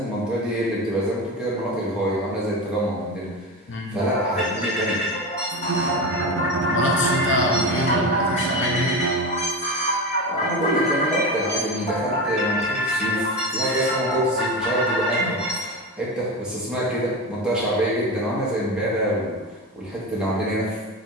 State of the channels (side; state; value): both; normal; correlation 0.22